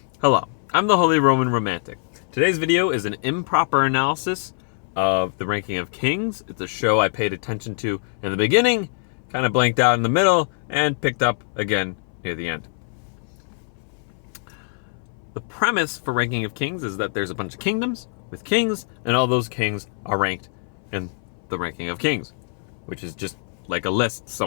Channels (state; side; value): silent; right; 61 dB below the other